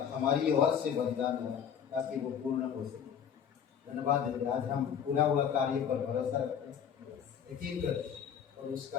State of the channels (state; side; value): quieter; right; 8.1 dB